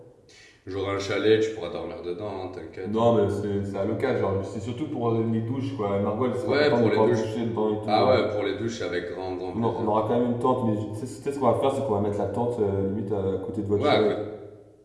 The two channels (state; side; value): identical; both; correlation 1.00